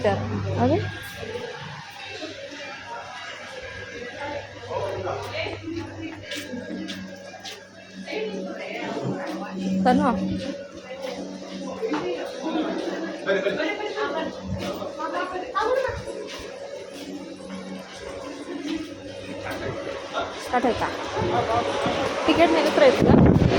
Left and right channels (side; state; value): both; identical; correlation 1.00